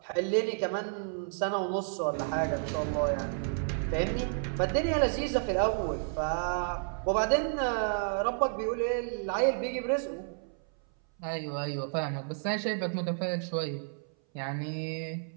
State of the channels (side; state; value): left; silent; 57 dB below the other